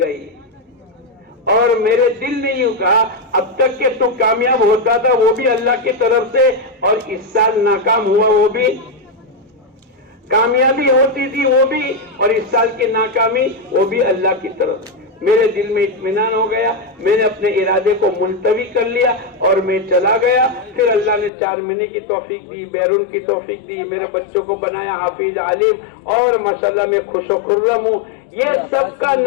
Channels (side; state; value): right; drops out; at 21.3 s